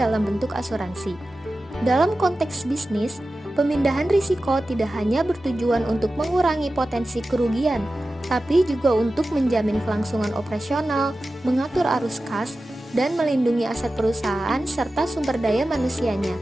bentuk asuransi. Dalam konteks bisnis, pemindahan risiko tidak hanya bertujuan untuk mengurangi potensi kerugian, tapi juga untuk menjamin kelangsungan operasional, mengatur arus kas, dan melindungi aset perusahaan serta sumber daya manusianya.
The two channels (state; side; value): normal; both; correlation 0.94